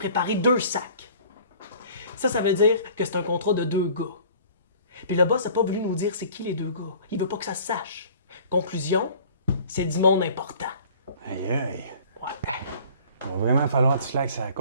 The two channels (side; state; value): both; inverted; correlation -0.49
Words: 2 sacs. Ça veut dire que c'est un contrat de 2 gars. Puis le boss n'a pas voulu nous dire c'est qui les 2 gars. Il veut pas que ça se sache. Conclusion, c'est du monde important. Aïe aïe. Ouais. Il va vraiment falloir que tu slackes la